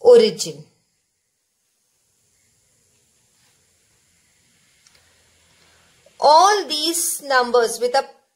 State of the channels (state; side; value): identical; both; correlation 1.00